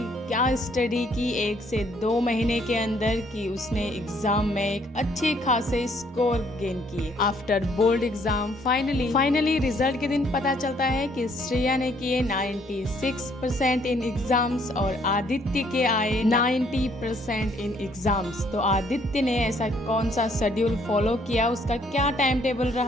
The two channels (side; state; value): both; normal; correlation 0.65